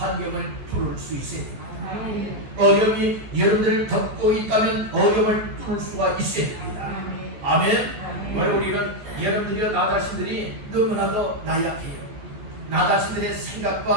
뚫을 수 있어야 됩니다. 어려움이 여러분들을 덮고 있다면 어려움을 뚫을 수가 있어야 됩니다. 아멘. 오늘 우리는 여러분들이와 나 자신들이 너무나도 나약해요. 나 자신들의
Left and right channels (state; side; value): late; left; 14 ms